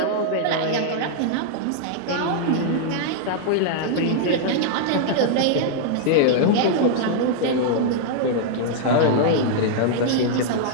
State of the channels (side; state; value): both; different; correlation -0.01